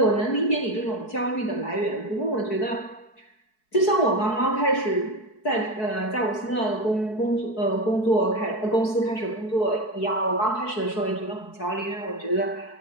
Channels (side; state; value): right; late; 4.6 ms